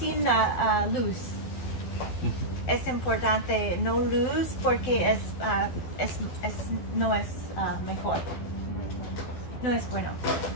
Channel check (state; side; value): late; right; 12 ms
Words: luz. Es importante no luz porque no es mejor. No es bueno.